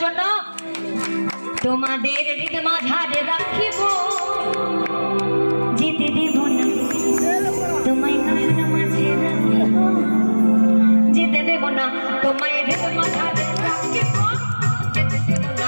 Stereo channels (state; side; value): inverted; both; correlation -1.00